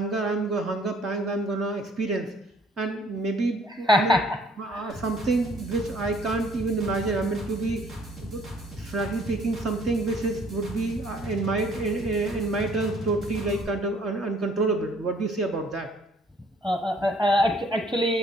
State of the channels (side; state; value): both; normal; correlation 0.59